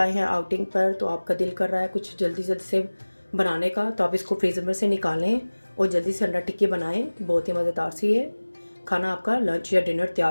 हैं आउटिंग पर तो आपका दिल कर रहा है कुछ जल्दी जल्दी से बनाने का, तो आप इसको फ्रीज़र में से निकालें और जल्दी से अंडा टिक्की बनाएं। बहुत ही मज़ेदार सी है खाना, आपका लंच या डिनर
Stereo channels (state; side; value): inverted; both; correlation -1.00